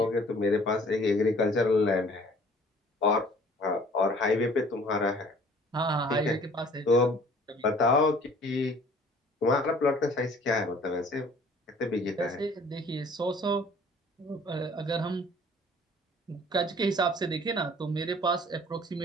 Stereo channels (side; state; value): both; normal; correlation 0.52